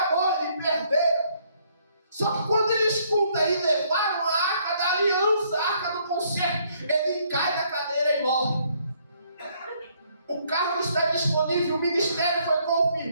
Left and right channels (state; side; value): inverted; both; correlation -0.67